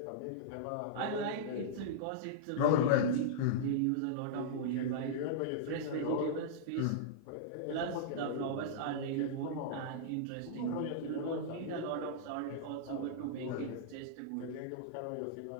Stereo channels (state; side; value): different; both; correlation -0.03